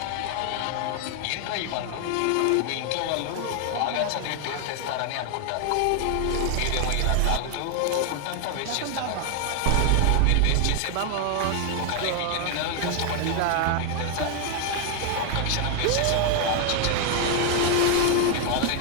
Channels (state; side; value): different; both; correlation 0.00